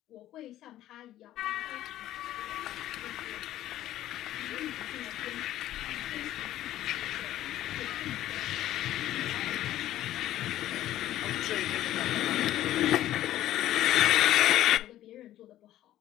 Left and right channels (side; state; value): right; quieter; 13.5 dB